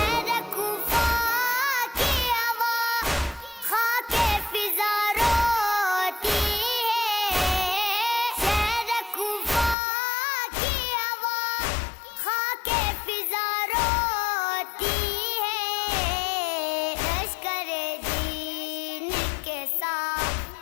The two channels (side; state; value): right; drops out; at 9.8 s